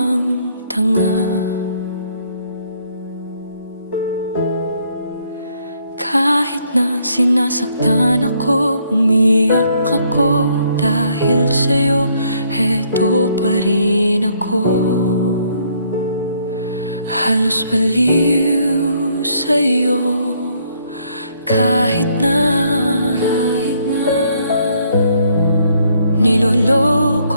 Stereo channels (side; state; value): both; inverted; correlation -0.68